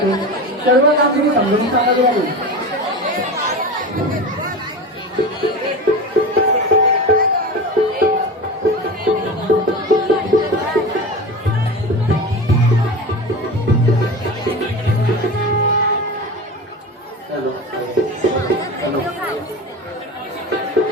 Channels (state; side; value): normal; both; correlation 0.28